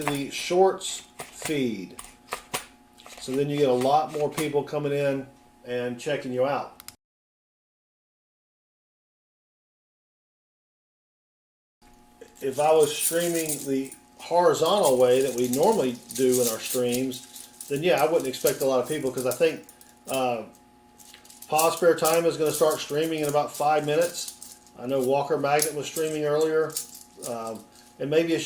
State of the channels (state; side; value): identical; both; correlation 1.00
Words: the shorts feed. So then you get a lot more people coming in and checking you out. If I was streaming the horizontal way that we normally do in our streams, then yeah, I wouldn't expect a lot of people because I think Pause Spare Time is going to start streaming in about 5 minutes. I know Walker Magnet was streaming earlier. And maybe